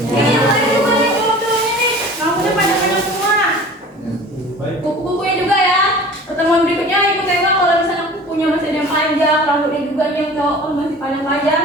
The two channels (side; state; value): both; normal; correlation 0.42